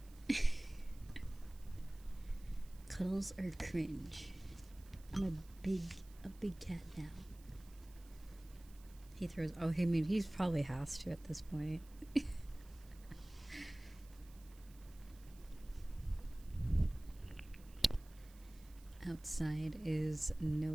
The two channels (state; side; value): noise; right; hiss, 24 dB below the sound